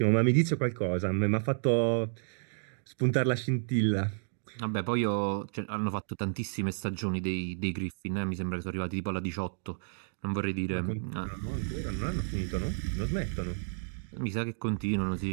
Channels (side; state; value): left; silent; digital silence